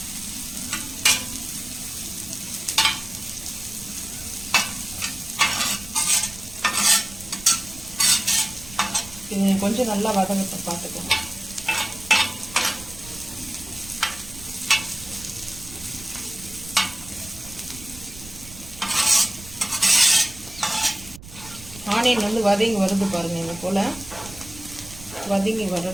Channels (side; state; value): right; noise; rumble, 16 dB below the sound